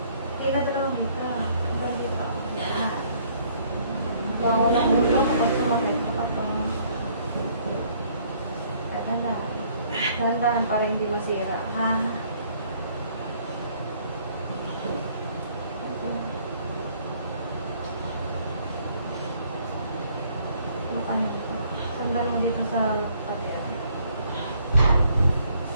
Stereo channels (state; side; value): inverted; both; correlation -0.63